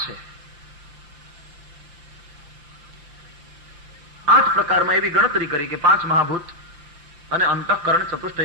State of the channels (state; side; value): late; left; 5.8 ms